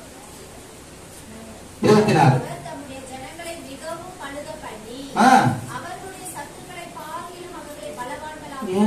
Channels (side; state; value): both; identical; correlation 1.00